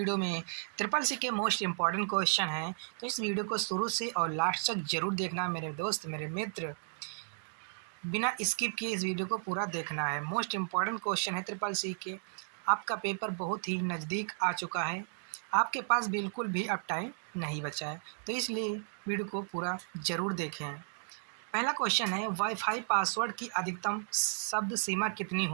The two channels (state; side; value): silent; left; digital silence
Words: में ट्रिपल सी के मोस्ट इम्पॉर्टेंट क्वेश्चन हैं, तो इस वीडियो को शुरू से और लास्ट तक ज़रूर देखना मेरे दोस्त, मेरे मित्र। बिना स्किप किए इस वीडियो को पूरा देखना है। मोस्ट इम्पॉर्टेंट क्वेश्चन है ट्रिपल सी के। आपका पेपर बहुत ही नज़दीक आ चुका है, आपके पास बिल्कुल भी अब टाइम नहीं बचा है, तो इसलिए वीडियो को पूरा ज़रूर देखें। पहला क्वेश्चन है, वाईफाई पासवर्ड की अधिकतम शब्द सीमा कितनी